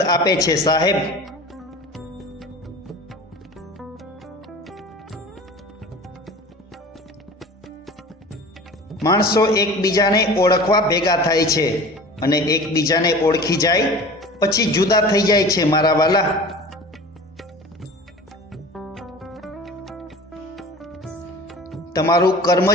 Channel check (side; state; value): both; normal; correlation 0.39